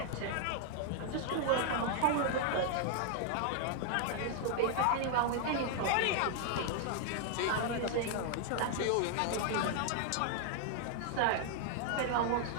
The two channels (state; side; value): different; both; correlation 0.00